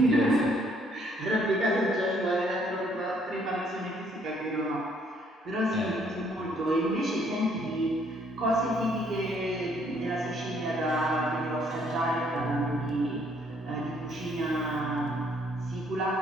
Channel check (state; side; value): normal; both; correlation 0.66